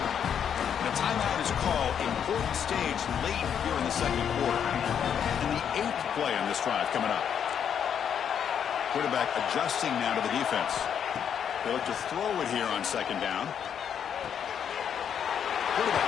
The timeout is called. Important stage late here in the 2nd quarter. And the 8th play on this drive coming up. Quarterback adjusting now to the defense. They look to throw it here on 2nd down.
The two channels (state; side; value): quieter; right; 8.3 dB